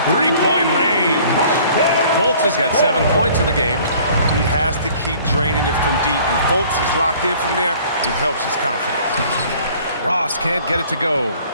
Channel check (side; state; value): both; inverted; correlation -0.53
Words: three-point range. Fultz has got 7 points in the game. He has to keep draining it from deep. When Fultz is locked in from there, it helps his confidence. Ross can't get it to go.